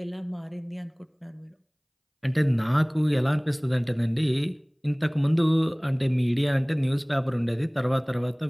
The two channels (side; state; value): both; identical; correlation 1.00